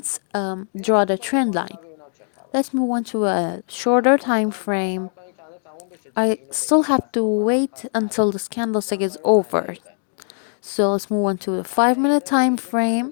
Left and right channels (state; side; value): silent; right; digital silence